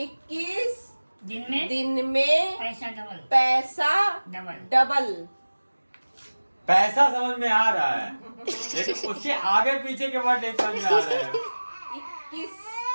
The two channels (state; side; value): inverted; both; correlation -1.00